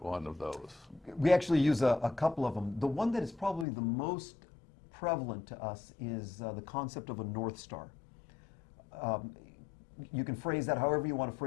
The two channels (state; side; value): drops out; right; at 3.7 s